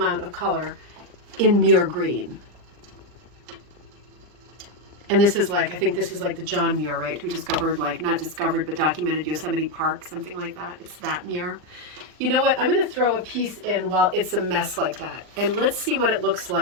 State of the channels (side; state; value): left; late; 39 ms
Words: of color in Muir green. And this is like, I think this is like the John Muir, right? Who discovered, like, not discovered, but documented Yosemite Park, something like that. It's that Muir. You know what? I'm going to throw a piece in while it's a mess like that. And let's see what it looks